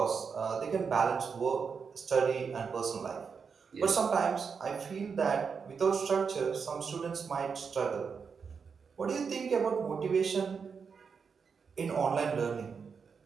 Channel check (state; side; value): quieter; left; 5.8 dB